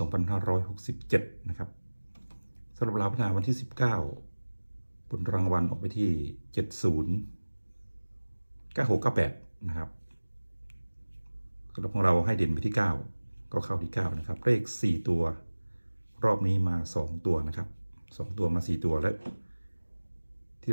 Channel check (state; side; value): inverted; both; correlation -1.00